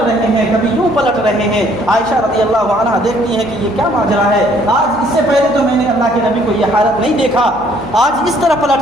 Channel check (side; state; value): left; noise; hum, 22 dB below the sound